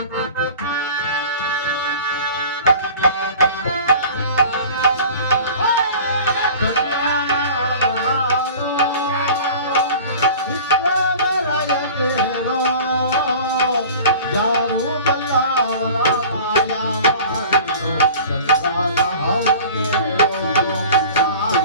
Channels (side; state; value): both; inverted; correlation -0.41